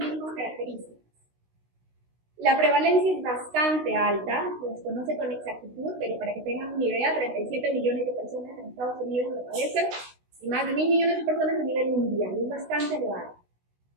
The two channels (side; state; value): left; late; 16 ms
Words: características. La prevalencia es bastante alta, se desconoce con exactitud, pero para que tengan una idea, 37 millones de personas en Estados Unidos lo padecen y más de 1.000 millones de personas a nivel mundial, es bastante elevado.